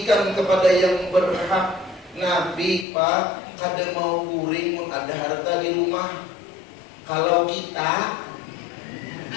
kepada yang berhak. Nabi, Pak, kada mau kuring mun ada harta di rumah. Kalau kita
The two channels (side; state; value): right; drops out; at 2.9 s